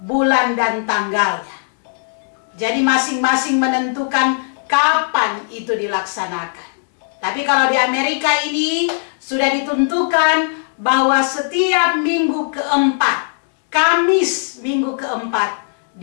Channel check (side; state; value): right; silent; digital silence